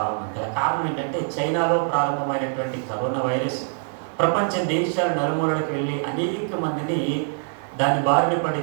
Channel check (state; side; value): silent; left; 55 dB below the other